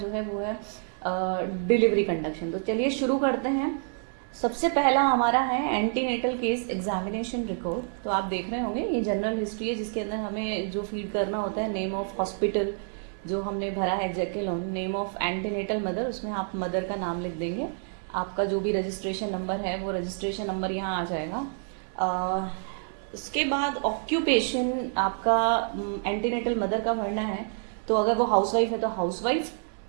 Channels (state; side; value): silent; left; 59 dB below the other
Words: है वो है डिलीवरी कंडक्शन। तो चलिए शुरू करते हैं। सबसे पहला हमारा है एंटीनेटल केस एग्जामिनेशन रिकॉर्ड। तो आप देख रहे होंगे ये जनरल हिस्ट्री है, जिसके अंदर हमें जो फीड करना होता है नेम ऑफ हॉस्पिटल जो हमने भरा है जैकेलॉन, नेम ऑफ एंटीनेटल मदर, उसमें आप मदर का नाम लिख देंगे। आपका जो भी रजिस्ट्रेशन नंबर है वो रजिस्ट्रेशन नंबर यहाँ आ जाएगा। उसके बाद ऑक्यूपेशन आपका एंटीनेटल मदर का भरना है। तो अगर वो हाउसवाइफ है तो हाउसवाइफ,